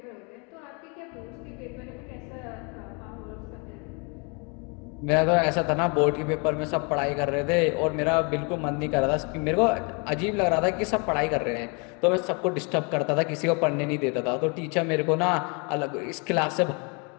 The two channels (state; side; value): quieter; right; 33.4 dB